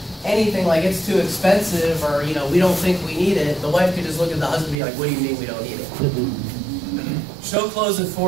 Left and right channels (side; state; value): left; drops out; at 4.8 s